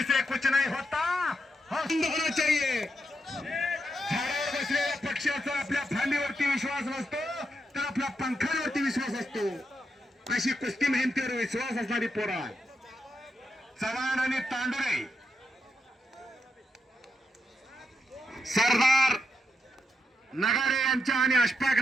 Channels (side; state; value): both; normal; correlation 0.83